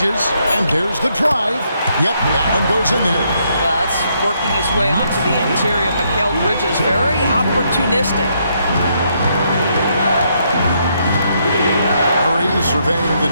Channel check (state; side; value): inverted; both; correlation -0.74